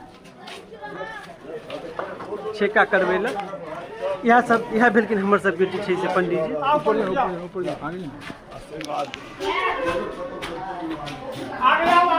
छेका करबै लए। इएह भेलखिन हमर सबके जे छै से पंडित जी।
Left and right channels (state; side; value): identical; both; correlation 1.00